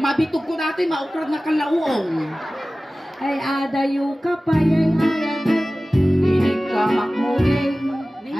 ko dati maukrad na kalauong. Ay, adayo ka pa yan. Inigamak muging.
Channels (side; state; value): both; normal; correlation 0.97